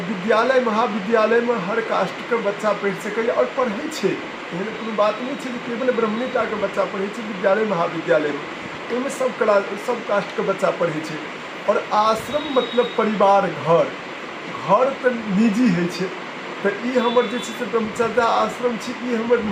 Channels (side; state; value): both; identical; correlation 1.00